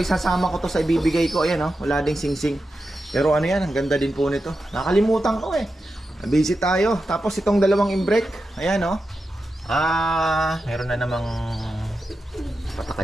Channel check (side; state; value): both; normal; correlation 0.90